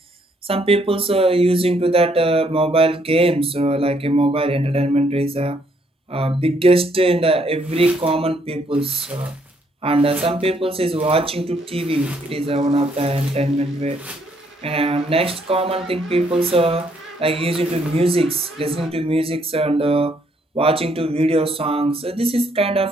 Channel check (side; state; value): both; normal; correlation 0.70